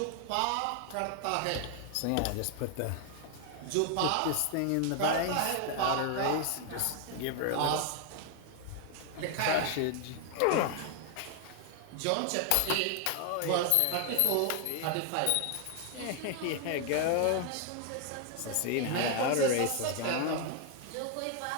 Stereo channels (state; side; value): different; both; correlation 0.00